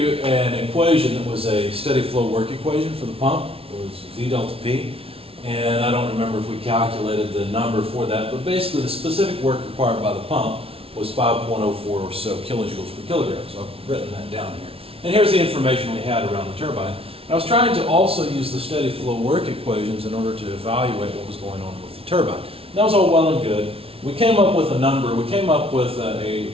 an equation that was a steady flow work equation for the pump. It was V delta P. And I don't remember if we calculated the number for that, but basically the specific work required by the pump was 5.04 or so kilojoules per kilogram. So I've written that down here. And here's the information we had around the turbine. I was trying to also use the steady flow work equations in order to evaluate what was going on with the turbine. That was all well and good. We came up with a number, we came up with a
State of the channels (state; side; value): late; left; 0.27 ms